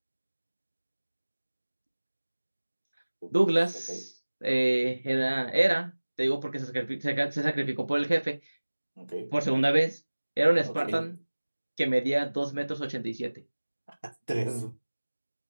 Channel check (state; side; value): inverted; both; correlation -1.00